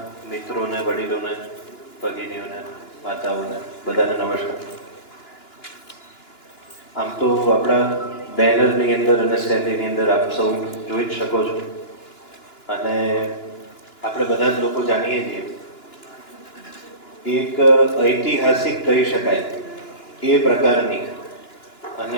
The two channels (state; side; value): late; right; 2.9 ms